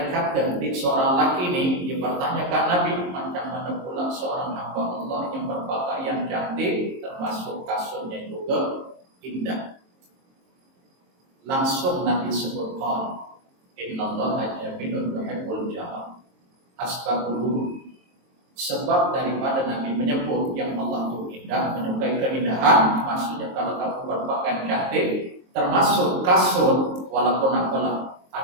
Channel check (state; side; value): late; left; 22 ms